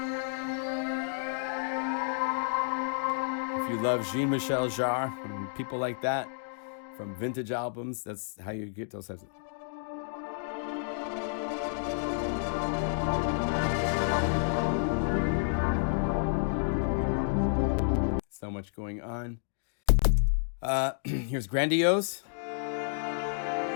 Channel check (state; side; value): silent; right; digital silence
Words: if you love Jean-Michel Jarre and people like that from vintage albums, that's how you get those types of... So much going on. Here's Grandiose.